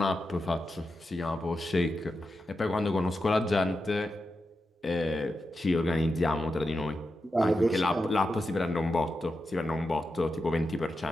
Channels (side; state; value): both; normal; correlation 0.89